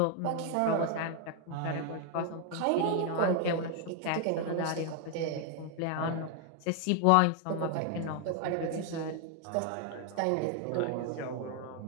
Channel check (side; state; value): both; different; correlation 0.00